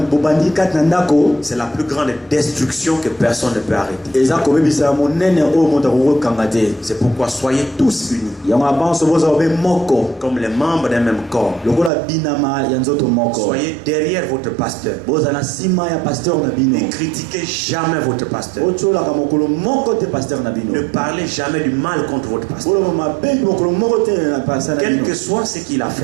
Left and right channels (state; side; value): drops out; left; at 11.9 s